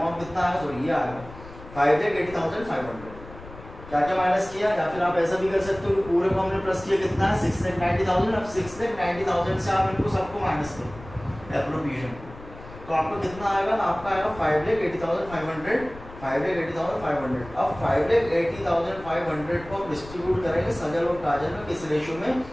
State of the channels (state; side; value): noise; left; rumble, 17 dB below the sound